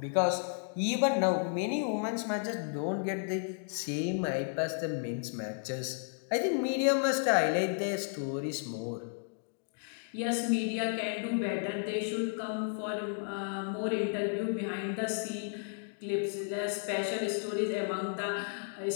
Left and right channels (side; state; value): right; silent; digital silence